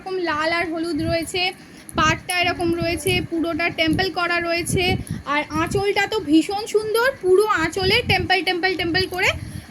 লাল আর হলুদ রয়েছে, পাটটা এরকম রয়েছে, পুরোটা টেম্পল করা রয়েছে, আর আঁচলটা তো ভীষণ সুন্দর, পুরো আঁচলে টেম্পল করে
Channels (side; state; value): both; identical; correlation 1.00